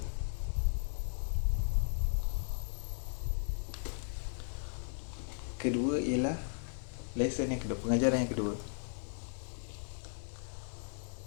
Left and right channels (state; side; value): silent; right; digital silence